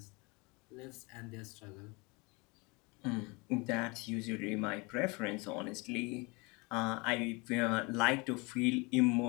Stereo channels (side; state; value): right; quieter; 27.9 dB